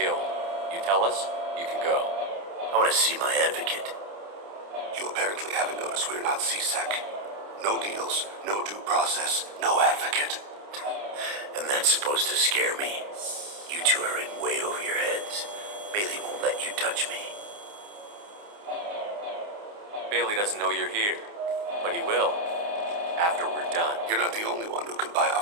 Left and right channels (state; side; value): late; left; 29 ms